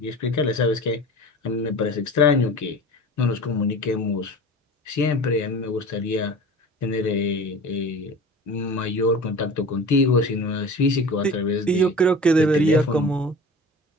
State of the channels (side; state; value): both; normal; correlation 0.37